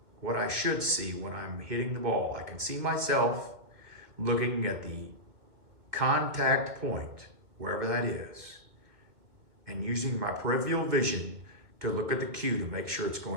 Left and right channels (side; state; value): left; late; 2.2 ms